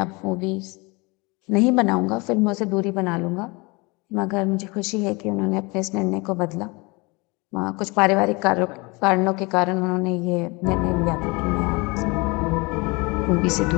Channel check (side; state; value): right; quieter; 26.7 dB